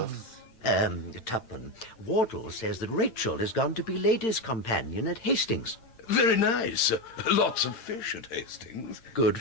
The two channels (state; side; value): late; right; 8.8 ms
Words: Tupman, Wardle says that Rachel has gone to be ladies' companion at Hastings. Very nice. Lots of fish at Hastings. Good